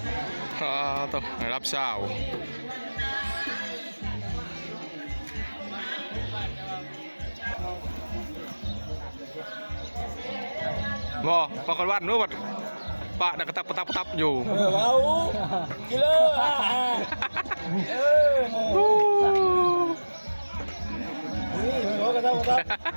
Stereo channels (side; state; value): both; inverted; correlation -1.00